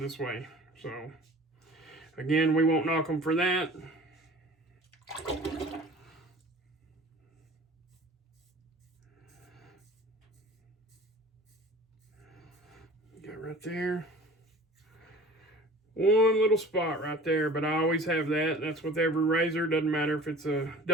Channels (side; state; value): both; normal; correlation 0.44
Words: way. So again, we won't knock them for that. Got right there. One little spot right there, but I always have that. That's with every razor. Doesn't matter if it's a